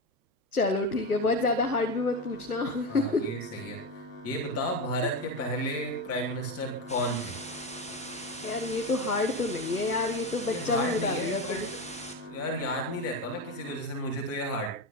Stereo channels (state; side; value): normal; both; correlation 0.17